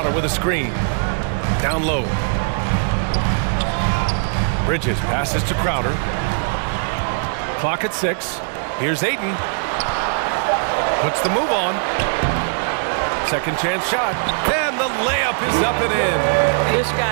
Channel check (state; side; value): silent; left; digital silence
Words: with a screen. Down low. Bridges passes to Crowder. Clock at 6. Here's Aiden. Puts the move on. Second chance shot. And the layup is up and in. This